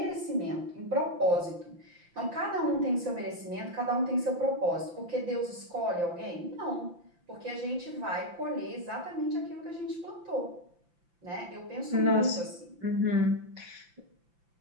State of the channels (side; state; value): left; late; 5.8 ms